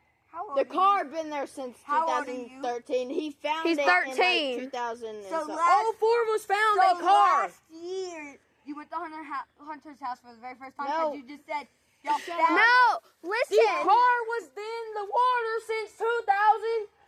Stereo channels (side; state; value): both; identical; correlation 1.00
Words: The car been there since How old are you? 2013. He found He's it 13. in like 2000 and So something. last- All 4 of us found So a car. last year, you went to Hunter's house for the very first time No. because you just said y'all found. no. The Listen. car was in the water since